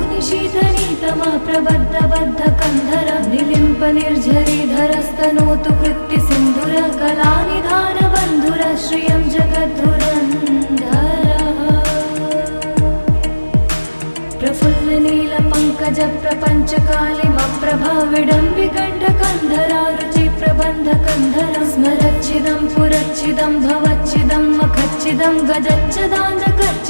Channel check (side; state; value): both; inverted; correlation -1.00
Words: शीतनीतमः प्रबद्धबद्धकन्धर निलिम्पनिर्झरीधरस्तनोतु कृत्तिसिन्धुर कलानिधानबन्धुर श्रियं जगद्धुरन्धरः प्रफुल्लनीलपङ्कजप्रपञ्चकालिमप्रभा विडम्बिकण्ठकन्धरा रुचिप्रबन्धकन्धरं स्मरच्चिदं पुरच्चिदं भवच्चिदं मखच्चिदं